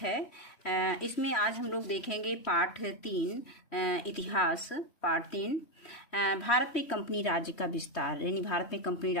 है। इसमें आज हम लोग देखेंगे पाठ 3 इतिहास। पाठ 3 भारत में कंपनी राज्य का विस्तार, यानी भारत में कंपनी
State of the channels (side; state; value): right; late; 3.1 ms